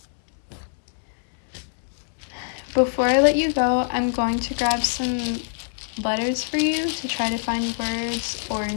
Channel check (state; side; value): silent; right; digital silence